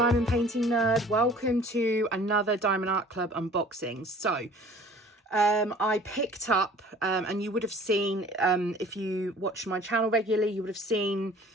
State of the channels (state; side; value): normal; both; correlation 0.49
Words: Diamond Painting Nerd. Welcome to another Diamond Art Club unboxing. So I picked up, and you would have seen, if you watch my channel regularly, you would have seen